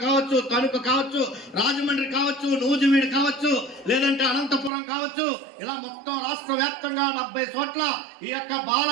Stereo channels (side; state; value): left; drops out; at 4.7 s